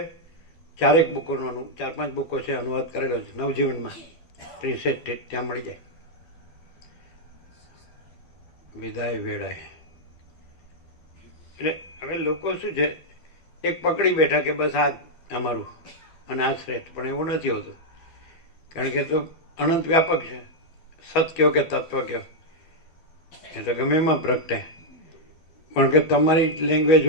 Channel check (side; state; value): right; late; 12 ms